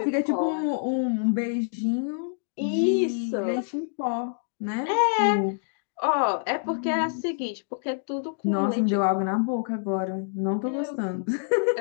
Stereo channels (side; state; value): right; silent; digital silence